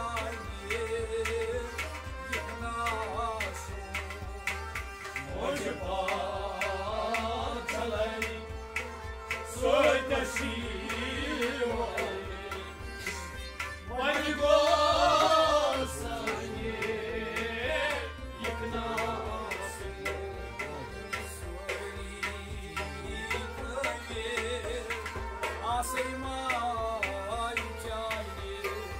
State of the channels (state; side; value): identical; both; correlation 1.00